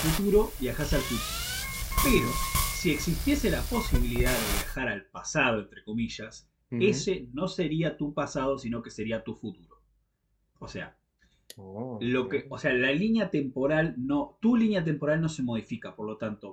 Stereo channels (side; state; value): both; identical; correlation 1.00